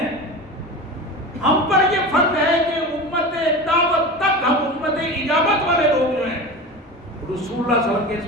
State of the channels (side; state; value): both; normal; correlation 0.29